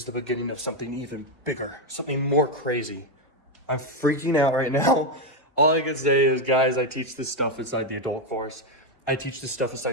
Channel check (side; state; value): both; normal; correlation 0.06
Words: the beginning of something even bigger, something more crazy. I'm freaking out right now. All I can say is, guys, I teach this stuff inside the adult course. I teach this stuff